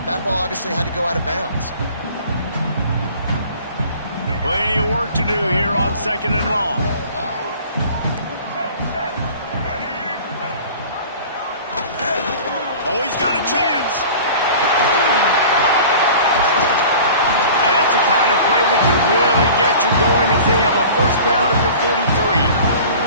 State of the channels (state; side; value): inverted; both; correlation -0.43